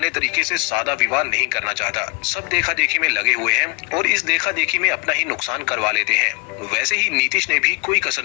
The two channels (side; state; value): right; quieter; 30.0 dB